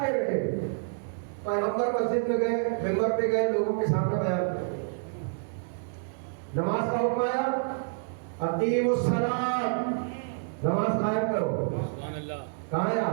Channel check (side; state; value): left; silent; digital silence